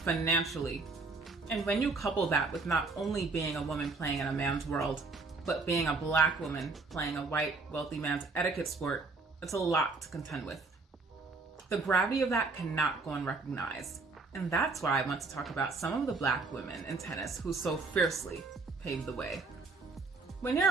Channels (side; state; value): left; quieter; 4.0 dB